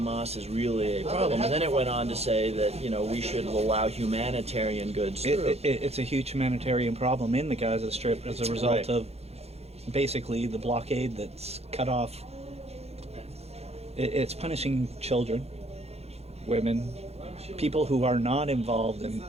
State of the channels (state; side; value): late; left; 0.30 ms